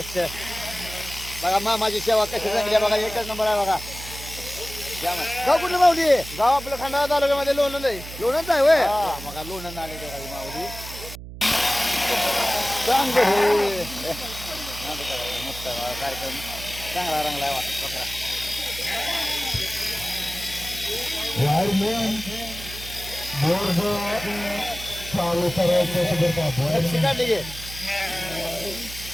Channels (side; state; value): right; noise; hum, 12 dB below the sound